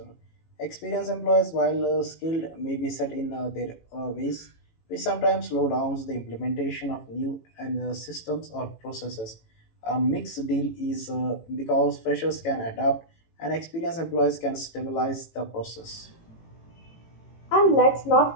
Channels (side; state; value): right; late; 18 ms